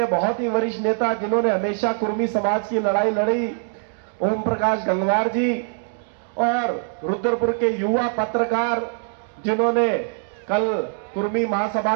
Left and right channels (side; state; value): left; silent; 61 dB below the other